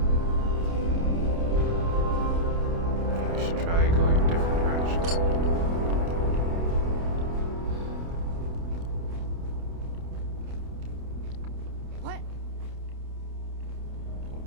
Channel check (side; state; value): left; late; 29 ms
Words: We should try going a different direction. What? Oh,